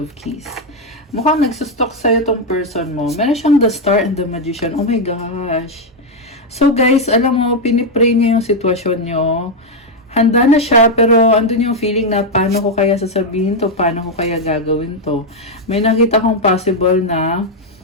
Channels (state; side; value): normal; both; correlation 0.02